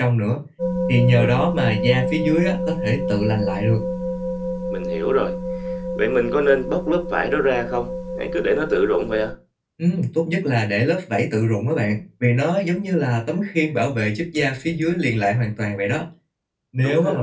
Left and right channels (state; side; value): identical; both; correlation 1.00